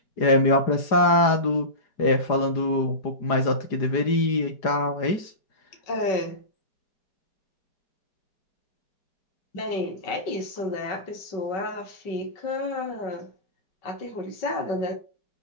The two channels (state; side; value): late; right; 4.9 ms